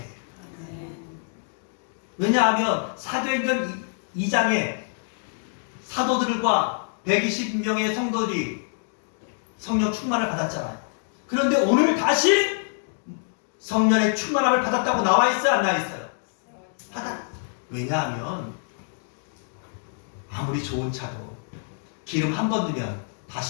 왜냐하면 사도행전 2장에 사도들과 120명의 성도들이 성령 충만을 받았잖아요. 그런데 오늘 다시 성령의 충만함을 받았다고 나와 있어요, 안 나와 있어요? 왜냐하면 아무리 좋은 차도 기름 한 번 넣으면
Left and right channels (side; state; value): right; silent; digital silence